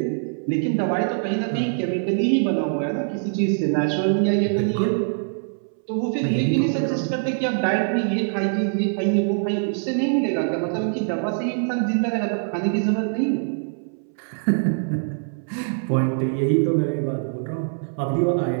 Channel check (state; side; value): silent; left; 63 dB below the other